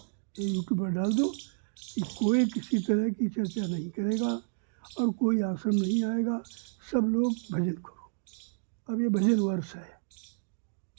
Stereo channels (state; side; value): silent; left; digital silence